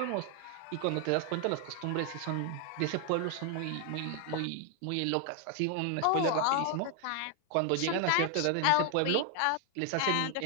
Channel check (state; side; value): different; both; correlation 0.00